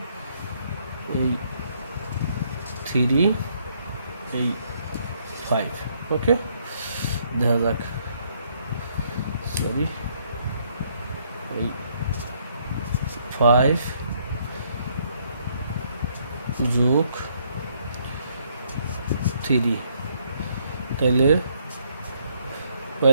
এই 3 এই 5, ওকে। দেখা যাক, সরি, এই 5 যোগ 3, তাইলে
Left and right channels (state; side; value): inverted; both; correlation -0.70